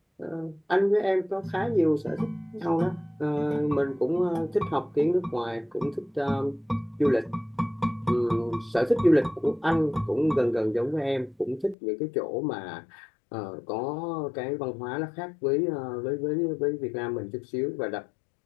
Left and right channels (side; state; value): right; drops out; at 11.8 s